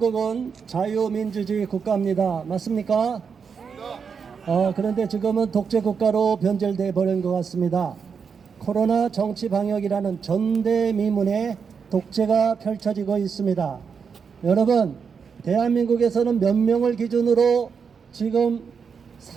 자유민주주의 국가입니다. 맞습니까? 그런데 지금은 독재 국가로 변절돼 버린 것 같습니다. 코로나 정치 방역이라는 전대미문의 독재가 펼쳐지고 있습니다. 여러분, 대한민국에서는 몇 명을 기준으로 지금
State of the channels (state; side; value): quieter; left; 6.1 dB